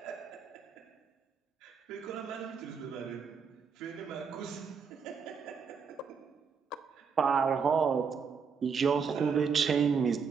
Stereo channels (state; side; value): quieter; left; 6.0 dB